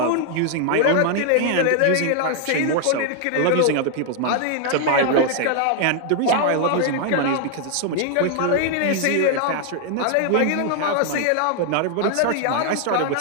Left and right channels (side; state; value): both; different; correlation 0.00